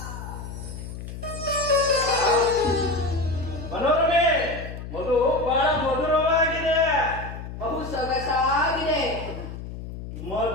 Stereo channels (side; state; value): left; noise; hum, 10 dB below the sound